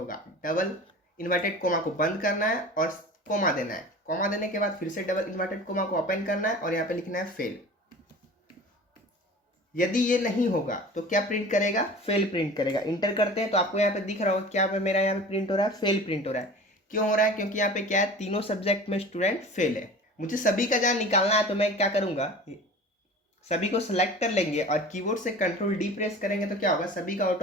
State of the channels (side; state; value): both; normal; correlation 0.39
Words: डबल इन्वर्टेड कोमा को बंद करना है और कोमा देना है। कोमा देने के बाद फिर से डबल इन्वर्टेड कोमा को ओपन करना है और यहाँ पे लिखना है फेल। यदि ये नहीं होगा तो क्या प्रिंट करेगा, फेल प्रिंट करेगा। इंटर करते हैं तो आपको यहाँ पे दिख रहा होगा क्या पे मेरा यहाँ पे प्रिंट हो रहा है, फेल प्रिंट हो रहा है। क्यों हो रहा है, क्योंकि यहाँ पे क्या है, तीनों सब्जेक्ट में स्टूडेंट फेल है। मुझे सभी का जहाँ निकालना है तो मैं क्या करूँगा, सभी को सिलेक्ट कर लेंगे और कीबोर्ड से कंट्रोल डी प्रेस करेंगे तो क्या होगा, सभी का